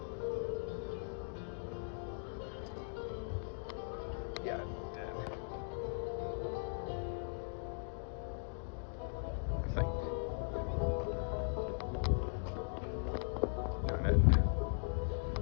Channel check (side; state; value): right; silent; digital silence